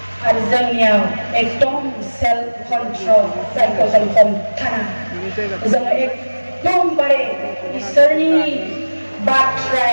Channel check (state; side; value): inverted; both; correlation -1.00